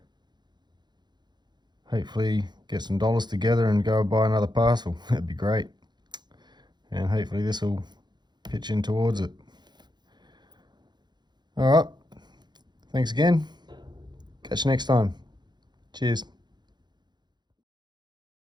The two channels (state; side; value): late; left; 0.21 ms